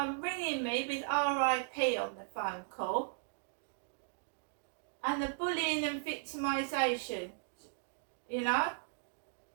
ringing me with RIP on the phone call, and the bullying and victimisation. You know,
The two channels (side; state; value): left; silent; digital silence